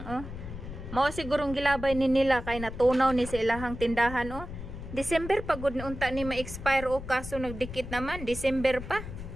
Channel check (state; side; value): noise; left; rumble, 10 dB below the sound